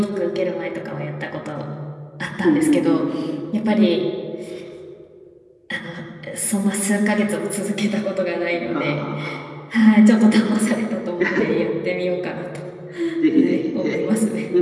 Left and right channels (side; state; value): both; identical; correlation 1.00